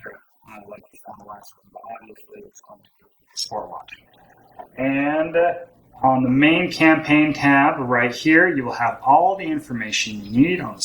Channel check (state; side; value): identical; both; correlation 1.00